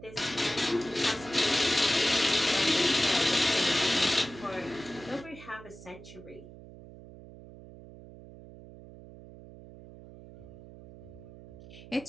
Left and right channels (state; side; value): noise; right; hum, 17 dB below the sound